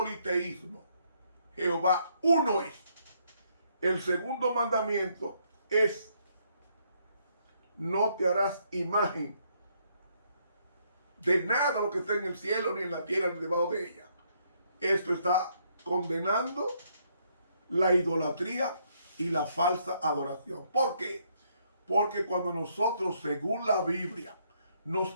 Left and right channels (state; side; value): inverted; both; correlation -0.71